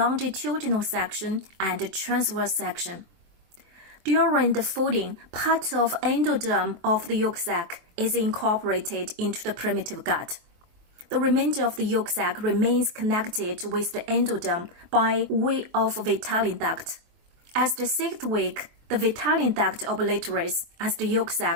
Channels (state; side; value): late; left; 23 ms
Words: section and transverse section. During the folding, part of endoderm of the yolk sac is incorporated into the primitive gut. The remainder of the yolk sac remains connected with the endoderm by way of Fetal duct. As the 6th week, the Fetal duct obliterates as the yolk